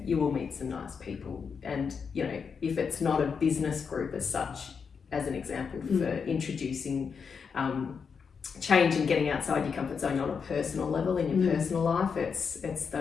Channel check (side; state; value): right; quieter; 6.0 dB